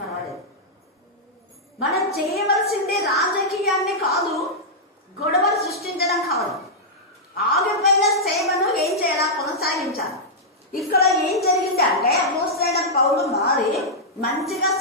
మనం చేయవలసింది రాజకీయాన్ని కాదు, గొడవలు సృష్టించడం కాదు. ఆగిపోయిన సేవను ఏం చేయాలా, కొనసాగించాలి. ఇక్కడ ఏం జరిగింది అంటే అపోస్తలుడైన పౌలు మారి మంచిగా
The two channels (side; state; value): both; normal; correlation -0.08